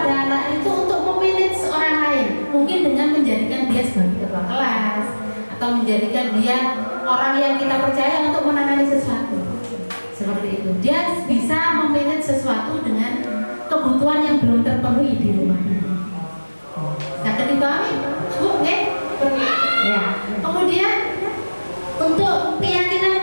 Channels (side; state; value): both; inverted; correlation -1.00